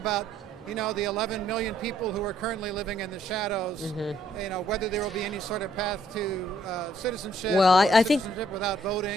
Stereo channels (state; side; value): normal; both; correlation 0.67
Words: the 11 million people who are currently living in the shadows, whether there will be any sort of path to citizenship, well, or I think citizenship without